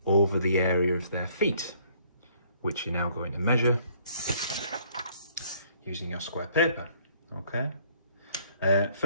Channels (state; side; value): inverted; both; correlation -0.61